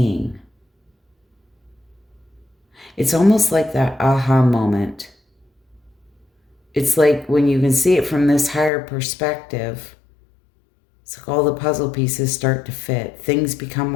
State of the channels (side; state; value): right; drops out; at 8.7 s